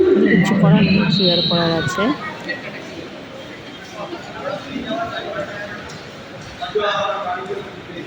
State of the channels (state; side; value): identical; both; correlation 1.00